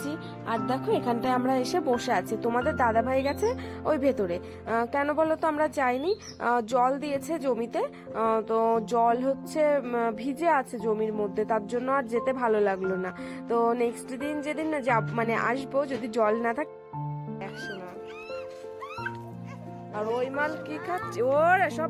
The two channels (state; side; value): identical; both; correlation 1.00